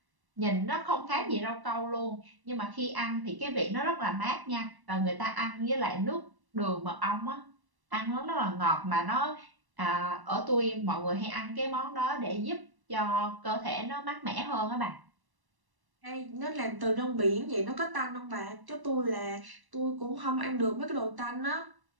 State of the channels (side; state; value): left; late; 1.1 ms